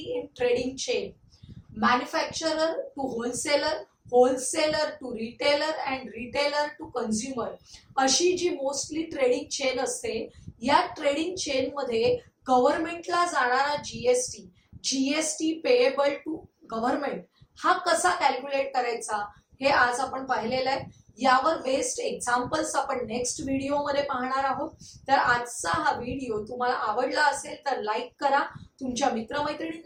in trading chain, manufacturer to wholesaler, wholesaler to retailer and retailer to consumer, अशी जी मोस्टली ट्रेडिंग चेन असते, या ट्रेडिंग चेन मध्ये गव्हर्नमेंटला जाणारा GST, GST payable to government, हा कसा कॅल्क्युलेट करायचा हे आज आपण पाहिलेलं आहे. यावर बेस्ड एक्झाम्पल्स आपण नेक्स्ट व्हिडिओ मध्ये पाहणार आहोत. तर आजचा हा व्हिडिओ तुम्हाला आवडला असेल तर लाईक करा, तुमच्या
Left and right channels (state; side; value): identical; both; correlation 1.00